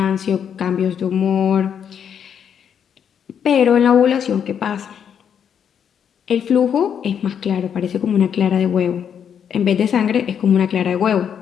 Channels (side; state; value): right; quieter; 8.1 dB